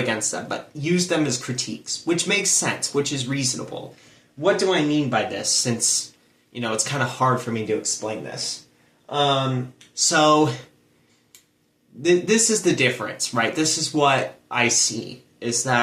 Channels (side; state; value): both; identical; correlation 1.00